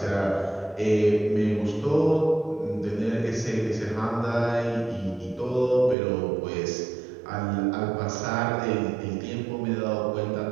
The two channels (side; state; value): left; drops out; at 6.0 s